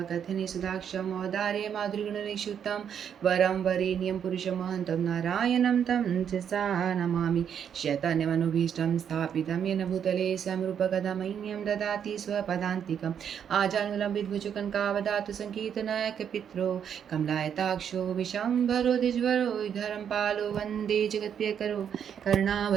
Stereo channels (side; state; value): left; quieter; 8.3 dB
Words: सुधाक्षं औदार्य माधुर्यगुणनिक्षुतं वरं वरेण्यं पुरुषमहन्तं नारायणं तं सा नमामि। शैतान्यमनुभीष्टं स्थापितं येन भूतले समरूपकदमह्यं ददाति स्वपदान्तिकम् आजानुलम्बितभुजकङ्कावदातु सङ्कीर्तनायकपित्रो कमलायताक्षो विशम्भरो द्विजवरो धरं पालो वन्दे जगत्प्रियकरो